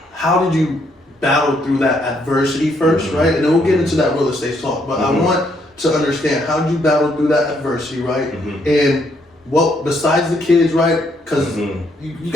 How did you battle through that adversity first, right? And then we'll get into that real estate talk. But I want to understand, how did you battle through that adversity, right? And what, besides the kids, right? Because you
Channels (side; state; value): both; normal; correlation 0.72